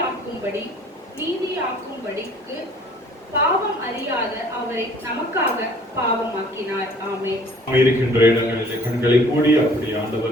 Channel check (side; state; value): both; normal; correlation 0.54